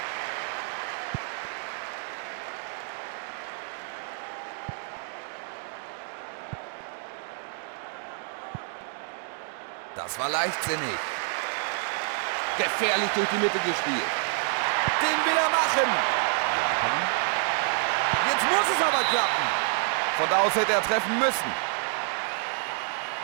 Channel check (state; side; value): silent; left; 59 dB below the other